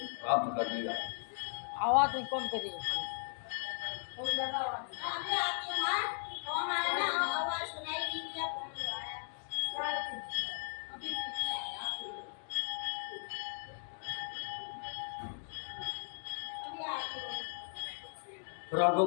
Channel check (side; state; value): right; silent; digital silence